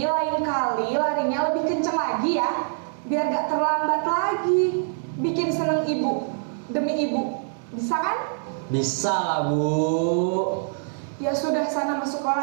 lain kali larinya lebih kencang lagi ya. Biar gak terlambat lagi. Bikin seneng ibu. Demi ibu. Bisa kan? Bisa lah, Bu. Ya sudah sana masuk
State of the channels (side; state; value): left; silent; digital silence